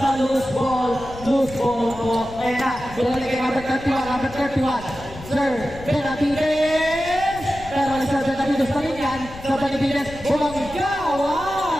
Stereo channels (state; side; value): noise; left; rumble, 15 dB below the sound